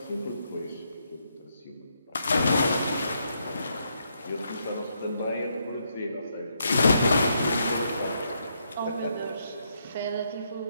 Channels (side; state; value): both; inverted; correlation -0.78